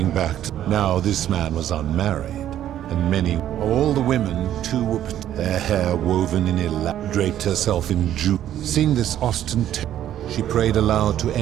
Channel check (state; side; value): quieter; left; 11.5 dB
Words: back to... Now this man was unmarried. And many, all the women, too, were their hair woven in draped herself in jewels. Seeing this ostentation, she prayed aloud to